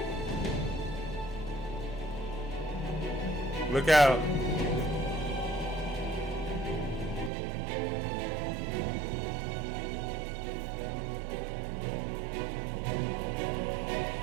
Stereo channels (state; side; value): drops out; left; at 7.3 s